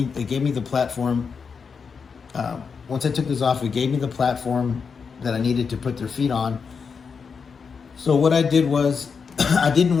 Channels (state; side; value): quieter; right; 5.7 dB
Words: the platform. Once I took this off, it gave me the platform that I needed to put their feet on. So what I did was, I didn't